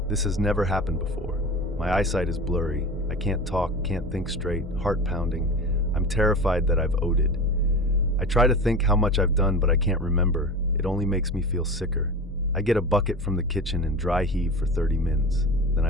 This has never happened before. My eyesight is blurry. I can't talk, can't think straight, heart pounding. I'm terrified that I've OD'd. I try to think how much I've done, but I can't remember. It only makes me feel sicker. I get a bucket from the kitchen and dry heave for 30 mins. Then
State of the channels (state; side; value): normal; both; correlation 0.31